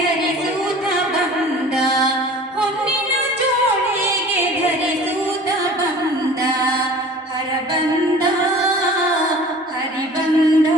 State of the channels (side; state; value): both; normal; correlation 0.44